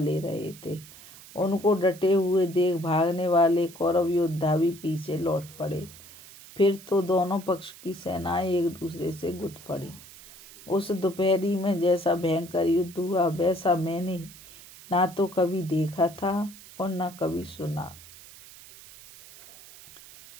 रहे थे। उनको डटे हुए देख भागने वाले कौरव योद्धा भी पीछे लौट पड़े। फिर तो दोनों पक्ष की सेनाएं एक दूसरे से गुट पड़ी। उस दोपहरी में जैसा भयंकर युद्ध हुआ वैसा मैंने ना तो कभी देखा था और न कभी सुना।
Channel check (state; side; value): noise; right; hiss, 19 dB below the sound